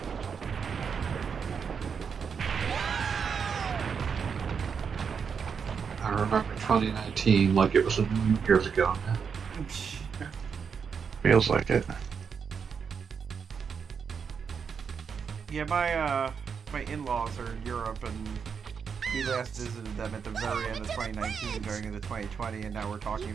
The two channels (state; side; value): quieter; left; 6.4 dB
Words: I remember 2019 like it was a million years ago. Feels like it. Yeah, my in-laws are in Europe, and we last visited them at the very end of 2019 going into 2020, and now we're talking